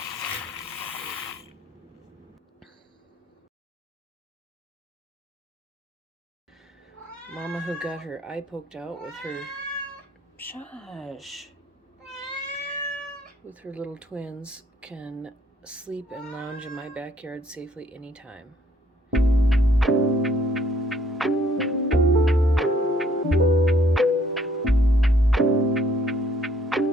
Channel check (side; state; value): both; normal; correlation 0.63